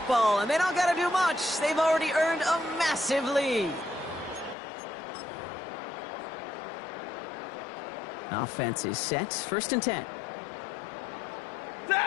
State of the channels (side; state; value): right; drops out; at 4.5 s